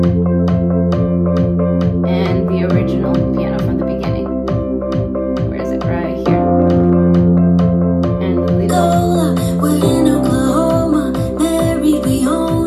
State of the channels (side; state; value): both; identical; correlation 1.00